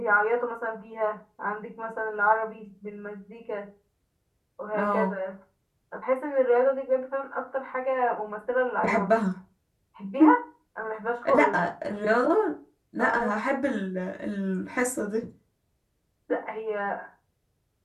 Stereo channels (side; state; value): both; identical; correlation 1.00